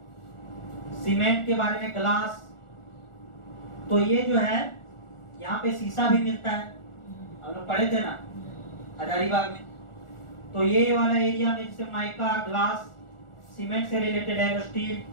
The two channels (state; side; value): late; right; 1.4 ms